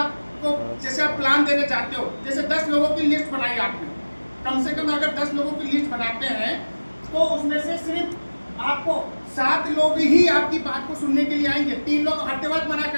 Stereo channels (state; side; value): inverted; both; correlation -1.00